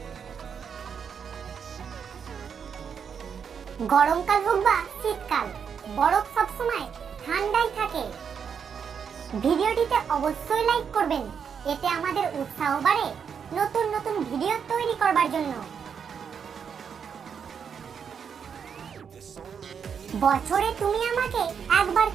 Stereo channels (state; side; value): quieter; left; 7.0 dB